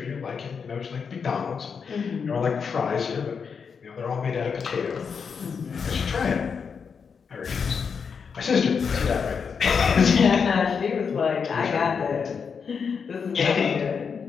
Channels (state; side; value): quieter; right; 6.1 dB